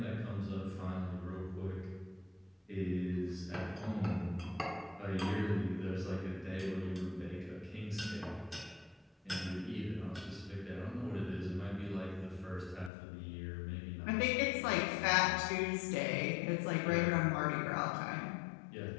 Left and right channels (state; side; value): drops out; right; at 12.9 s